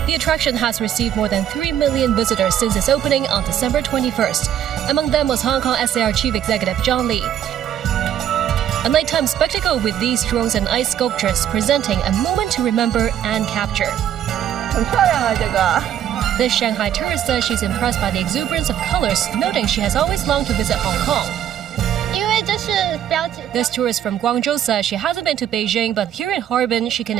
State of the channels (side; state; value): left; quieter; 10.3 dB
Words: The attraction has received more than 3 million visitors since its opening on December 21st. Among them was Hong Kong SAR Chief Executive John Lee. A nighttime spectacle with these drones and ice sculptures presenting a moment to remember and capture. This Shanghai tourist says she's impressed by the exuberance of colors, noting she has always longed to visit Hong Kong. This tourist from Guangzhou says she hasn't been to Beijing, but here in Harbin she can